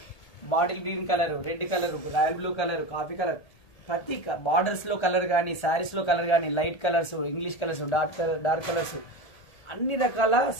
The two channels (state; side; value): late; right; 1.8 ms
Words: bottle green colour, red colour, royal blue colour, coffee colour, ప్రతి బార్డర్స్ లో కలర్ కానీ, శారీస్ లో కలర్ కానీ, light colours, English colours, dark colours, అన్ని రకాల